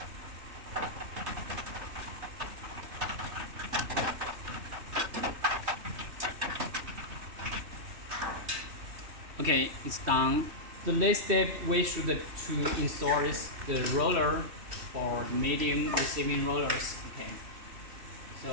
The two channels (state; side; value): late; left; 3.1 ms